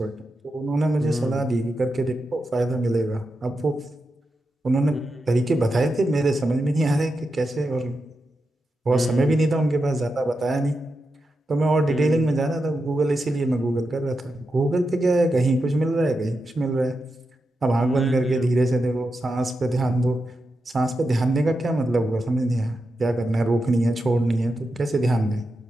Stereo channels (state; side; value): normal; both; correlation 0.88